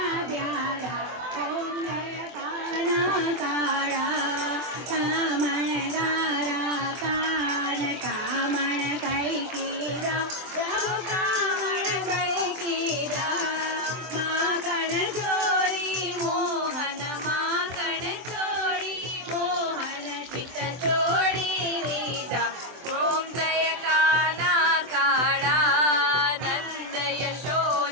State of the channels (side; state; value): left; late; 24 ms